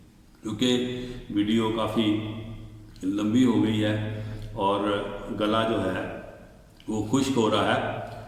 کیونکہ ویڈیو کافی لمبی ہو گئی ہے اور گلا جو ہے وہ خشک ہو رہا ہے،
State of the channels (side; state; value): both; identical; correlation 1.00